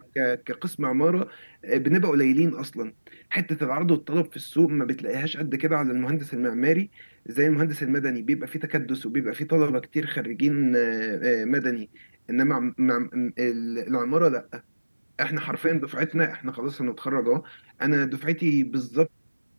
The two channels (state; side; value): inverted; both; correlation -1.00